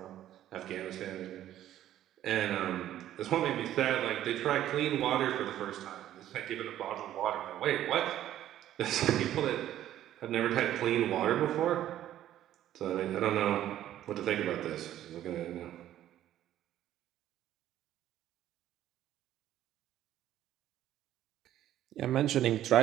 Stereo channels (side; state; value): left; quieter; 12.3 dB